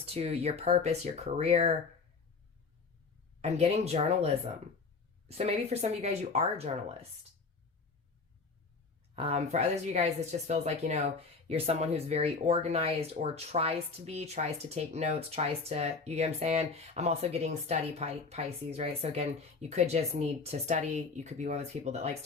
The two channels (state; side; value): quieter; right; 4.5 dB